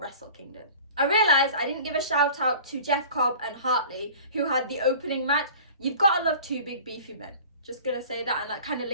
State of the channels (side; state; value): both; inverted; correlation -0.42